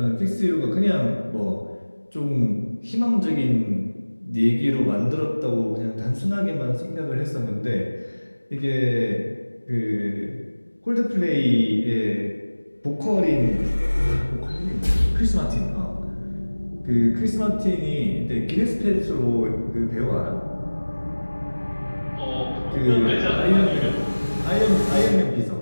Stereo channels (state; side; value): inverted; both; correlation -1.00